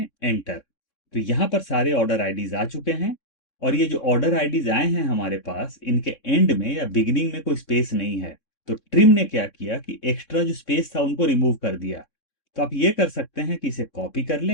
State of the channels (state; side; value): late; right; 3.6 ms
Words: एंटर। तो यहां पर सारे ऑर्डर आईडीज आ चुके हैं। और ये जो ऑर्डर आईडीज आए हैं हमारे पास, इनके एंड में या बिगिनिंग में कोई स्पेस नहीं है। तो ट्रिम ने क्या किया कि एक्स्ट्रा जो स्पेस था उनको रिमूव कर दिया। तो आप ये कर सकते हैं कि इसे कॉपी कर